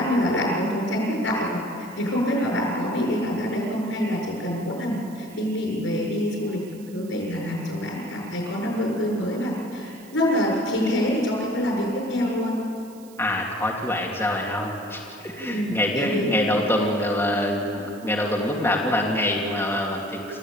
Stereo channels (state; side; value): noise; right; hiss, 24 dB below the sound